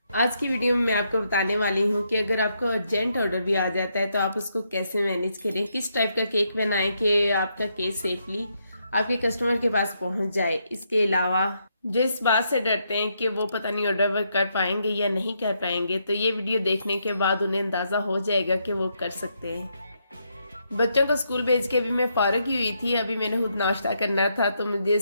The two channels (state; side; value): inverted; both; correlation -0.78